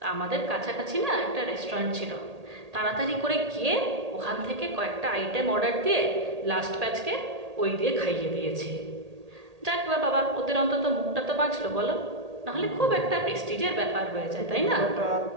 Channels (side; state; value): left; late; 1.8 ms